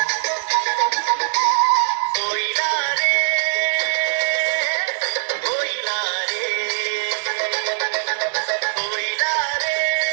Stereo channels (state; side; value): silent; left; digital silence